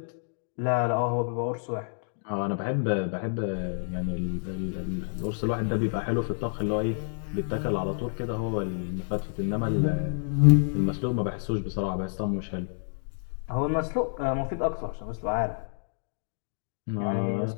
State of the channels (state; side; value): silent; right; digital silence